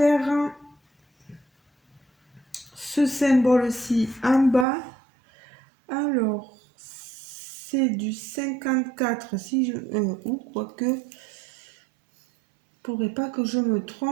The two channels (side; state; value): left; drops out; at 4.7 s